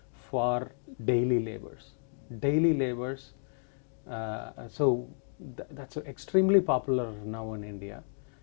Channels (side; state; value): right; silent; digital silence